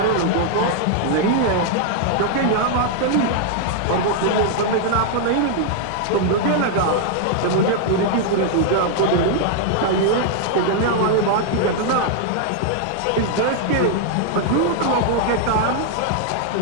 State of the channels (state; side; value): different; both; correlation 0.00